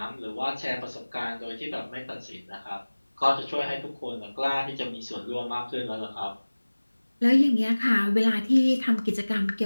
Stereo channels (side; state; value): both; inverted; correlation -1.00